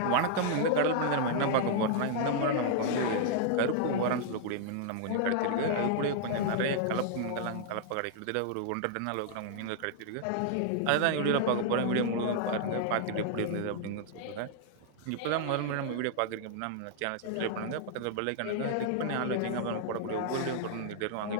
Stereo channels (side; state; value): both; different; correlation -0.01